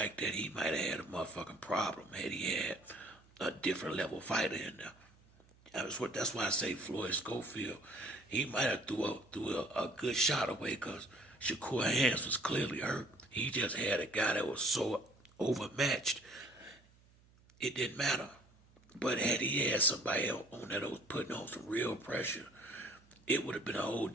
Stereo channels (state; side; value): noise; right; hum, 29 dB below the sound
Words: that, he might have had a motherfucking problem had he had a different level fighter in there. That's why I say Floyd Schofield. He might have threw a good shot away because Shakur hands was clearly hurt. He just had a guy that was so overmatched, it didn't matter. But had he had somebody else on that was putting on some real pressure, it would have been a whole